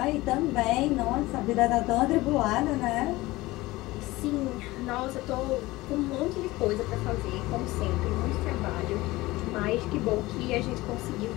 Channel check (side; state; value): right; quieter; 19.5 dB